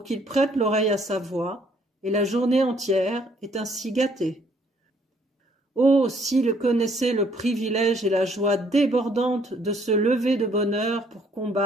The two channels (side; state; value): both; normal; correlation 0.65